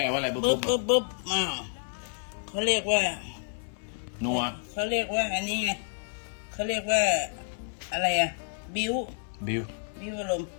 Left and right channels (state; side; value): silent; right; 58 dB below the other